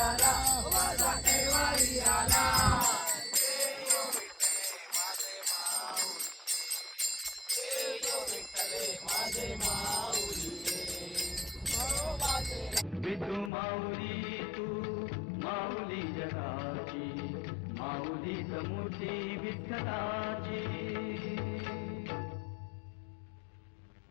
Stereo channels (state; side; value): drops out; right; at 13.5 s